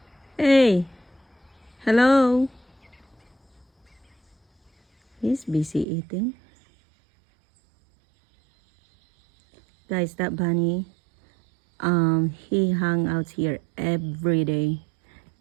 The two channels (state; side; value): drops out; left; at 5.9 s